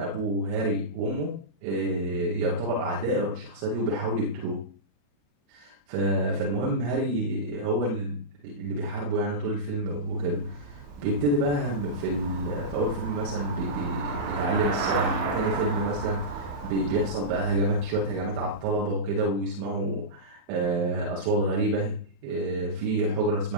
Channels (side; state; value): left; late; 34 ms